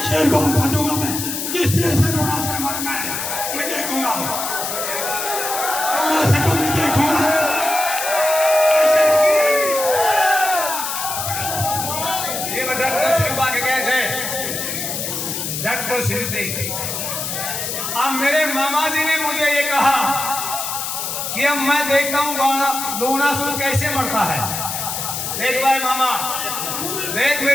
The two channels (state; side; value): noise; left; hiss, 4 dB below the sound